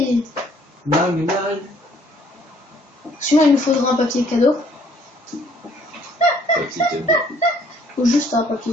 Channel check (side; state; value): both; normal; correlation 0.61